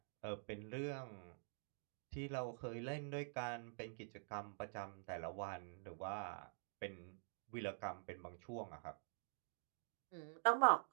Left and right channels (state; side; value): silent; left; digital silence